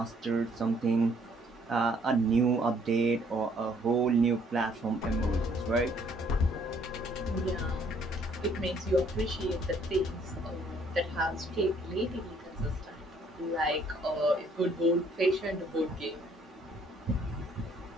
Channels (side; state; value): both; normal; correlation 0.64